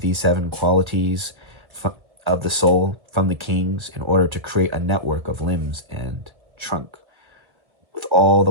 these 7 qualities of the soul from the kings in order to create a network of limbs and trunk with all the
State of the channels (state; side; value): late; left; 1.8 ms